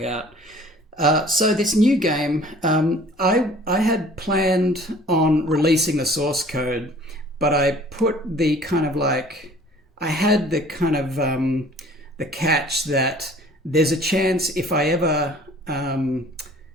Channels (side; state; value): both; normal; correlation 0.51